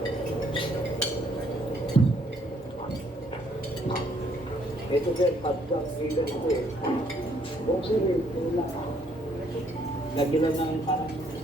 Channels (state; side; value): normal; both; correlation 0.67